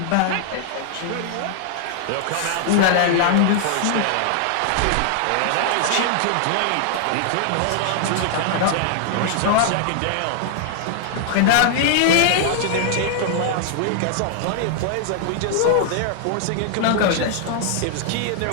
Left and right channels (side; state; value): both; different; correlation 0.00